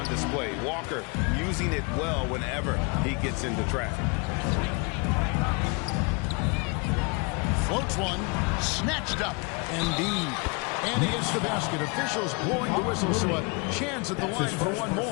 display. Walker using it well whenever he gets into traffic. Floats one. Snatched up. Embiid. And he hits the basket. Officials blowing the whistle, so a chance at the line for one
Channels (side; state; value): right; quieter; 31.0 dB